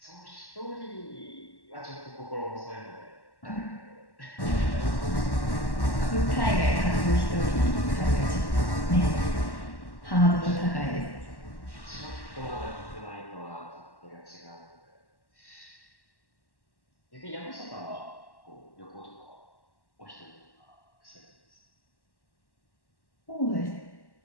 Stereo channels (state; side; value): late; right; 1.1 ms